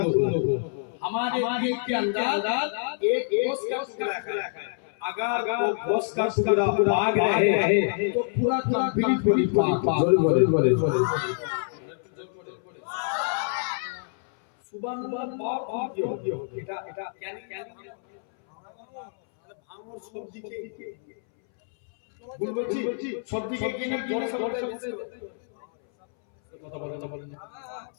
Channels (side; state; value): right; silent; 60 dB below the other